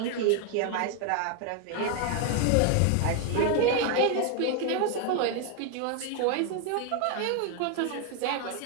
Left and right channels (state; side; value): different; both; correlation 0.01